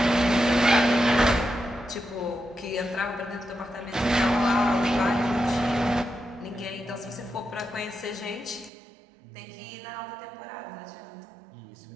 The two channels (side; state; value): left; drops out; at 8.7 s